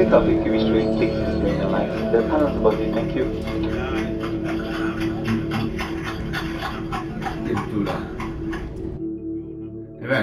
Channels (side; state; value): both; identical; correlation 1.00